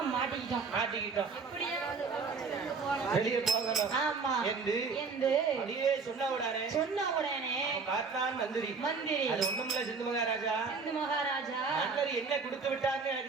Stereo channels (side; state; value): left; quieter; 4.8 dB